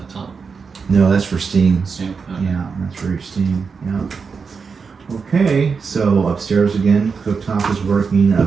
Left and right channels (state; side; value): quieter; left; 5.4 dB